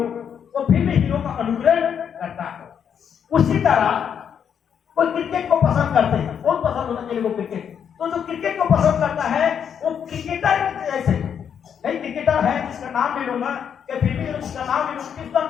वो फिल्मी हीरो का अनुकरण करता है। उसी तरह कोई क्रिकेट को पसंद करते हैं, बहुत पसंद होता है क्रिकेट, तो जो क्रिकेट को पसंद करता है वो क्रिकेटर जैसे, कई क्रिकेटर है जिसका नाम नहीं लूंगा, या फिल्मी जिसका नाम नहीं लूंगा, किसका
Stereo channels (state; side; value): quieter; right; 7.9 dB